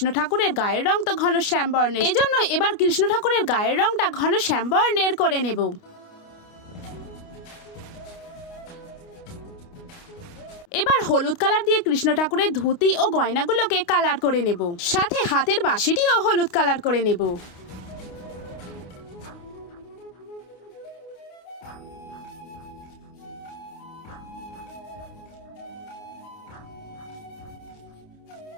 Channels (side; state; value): right; late; 29 ms